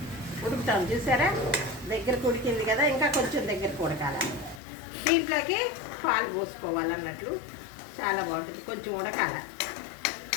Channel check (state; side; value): drops out; right; at 4.6 s